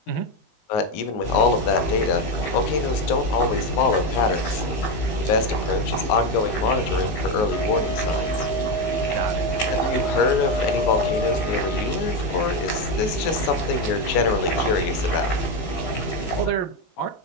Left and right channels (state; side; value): late; right; 19 ms